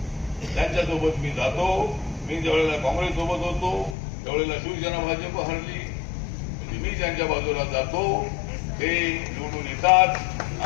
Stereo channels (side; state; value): right; drops out; at 4.0 s